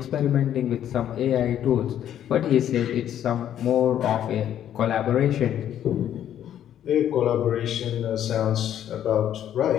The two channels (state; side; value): quieter; right; 10.6 dB